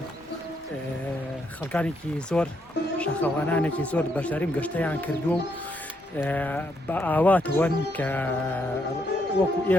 خەڵکانێکی زۆر شاخەوانانێکی زۆر بەشداریم گەشتەیان کردووە و بە ئاواتەوەن کە وەکو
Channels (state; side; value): normal; both; correlation 0.76